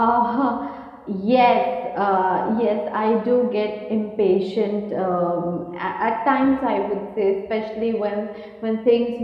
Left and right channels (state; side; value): identical; both; correlation 1.00